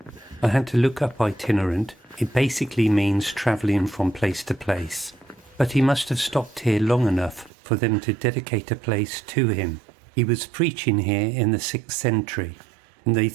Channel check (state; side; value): drops out; left; at 7.5 s